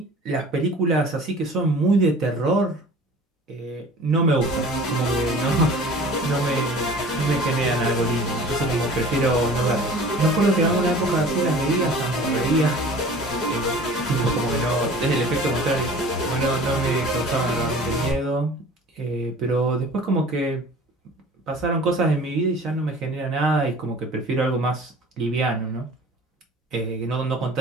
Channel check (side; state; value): both; normal; correlation 0.44